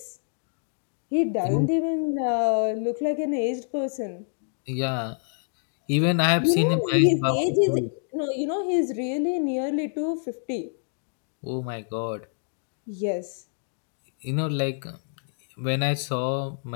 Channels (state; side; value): silent; right; digital silence